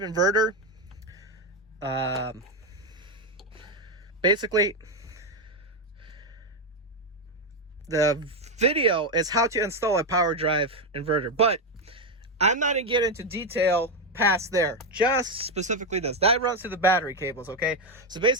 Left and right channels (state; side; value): normal; both; correlation 0.07